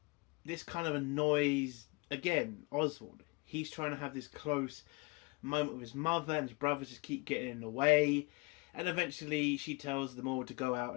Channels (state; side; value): quieter; right; 27.9 dB